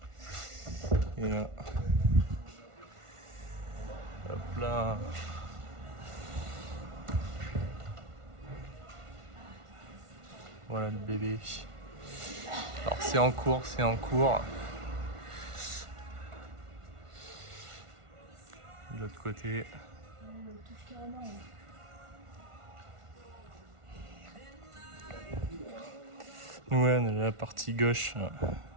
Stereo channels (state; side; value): late; left; 1.5 ms